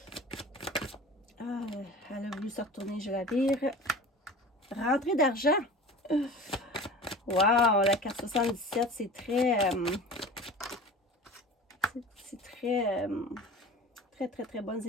Ah, elle a voulu se retourner, je la vire. Rentrée d'argent. Wow, la carte 77, c'est très... c'est très... très bonnes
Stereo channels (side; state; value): both; normal; correlation 0.38